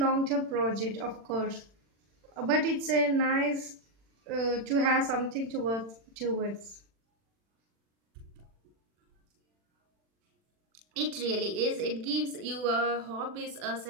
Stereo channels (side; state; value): left; late; 40 ms